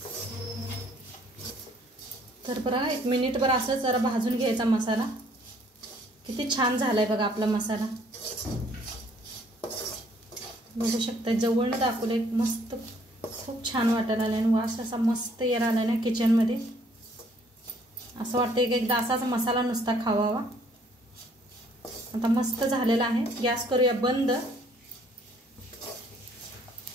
तर बघा 1 मिनिटभर असं जरा भाजून घ्यायचा मसाला. किती छान झालाय बघा आपला मसाला. बघू शकता जवळनं दाखवलंय. मस्त खूप छान वाटायला आलाय आणि वास असा मस्त यायला आलाय ना किचन मध्ये. असं वाटतंय की एकदा असाच मसाला नुसता खावावा. आता मस्त झालेला आहे. गॅस करूया बंद.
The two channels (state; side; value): normal; both; correlation 0.62